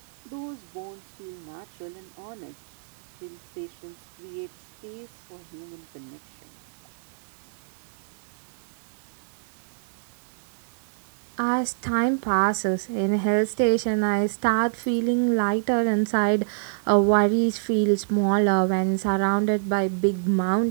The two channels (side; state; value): left; silent; digital silence